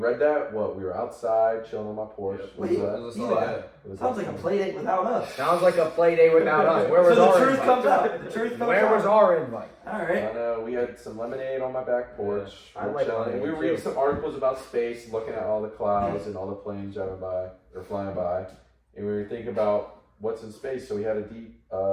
that. We were outside chilling on my porch. Yep. What Wait, was It that? was a Eli. solid day. What was Sounds that? like a play date without us. Sounds like a play day without us. Where was So the our truth invite? comes out. The truth comes Where out. was our invite? All I right. know. We had some lemonade on my back porch. I We're like chilling. lemonade, We were reading too. some articles about space, looking at all the clouds and all the planes driving by or flying by, and we were thinking about what's in space. So we had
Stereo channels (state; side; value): identical; both; correlation 1.00